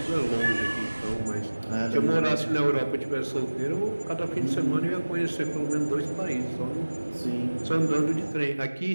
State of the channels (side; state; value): both; inverted; correlation -1.00